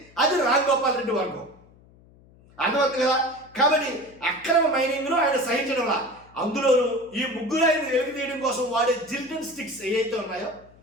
అది రామ్ గోపాల్ రెడ్డి వర్గం. అర్థమవుతుంది కదా. కాబట్టి అక్రమ మైనింగ్ను ఆయన సహించడంలా, అందులోనూ ఈ ముగ్గురు ఆయన వెలికి తీయడం కోసం వాడే జిలిటన్ స్టిక్స్ ఏవైతే ఉన్నాయో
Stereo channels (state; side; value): noise; left; hum, 27 dB below the sound